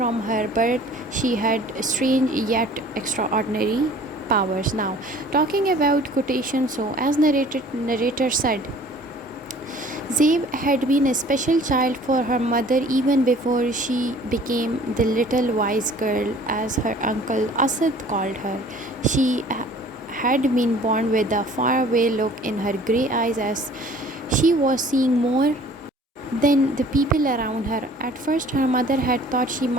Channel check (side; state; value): both; normal; correlation 0.51